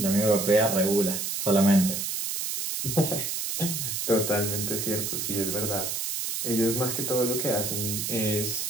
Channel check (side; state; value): right; noise; hiss, 2 dB below the sound